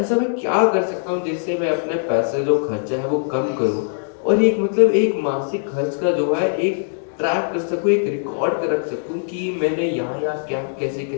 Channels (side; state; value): right; silent; digital silence